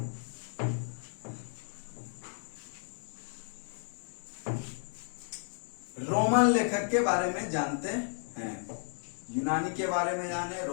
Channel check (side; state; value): right; silent; 55 dB below the other